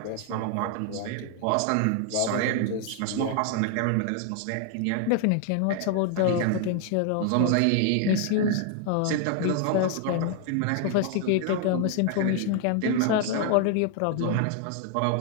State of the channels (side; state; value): both; different; correlation 0.00